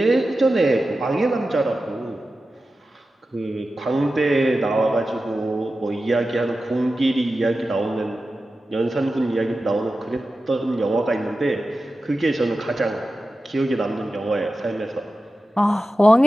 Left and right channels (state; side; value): normal; both; correlation 0.93